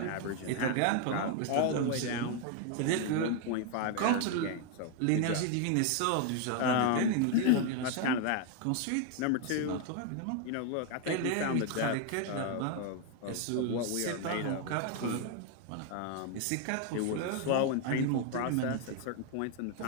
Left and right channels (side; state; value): both; different; correlation 0.01